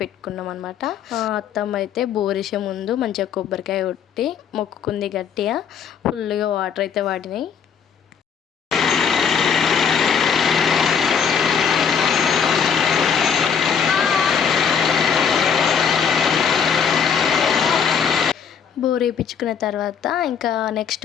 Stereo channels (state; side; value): quieter; right; 7.1 dB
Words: అనమాట. అత్తమ్మ అయితే బోర్ వేసే ముందు మంచిగా కొబ్బరికాయ కొట్టి మొక్కుకుంది గట్టిగా. ఫుల్గా వాటర్ అయితే వాడినాయి. బోర్ వేయించుకున్న తర్వాత ఇంకా